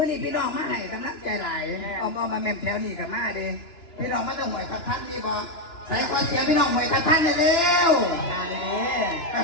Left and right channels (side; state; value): right; late; 2.9 ms